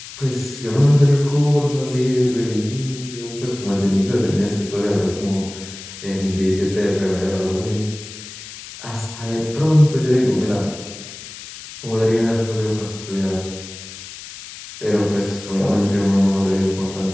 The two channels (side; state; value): left; noise; hiss, 14 dB below the sound